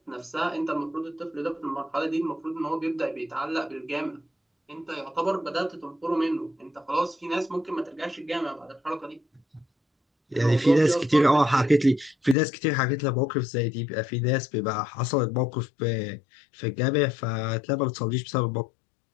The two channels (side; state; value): right; drops out; at 12.4 s